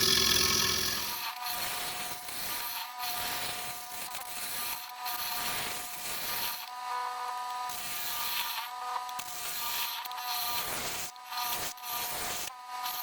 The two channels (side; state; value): both; identical; correlation 1.00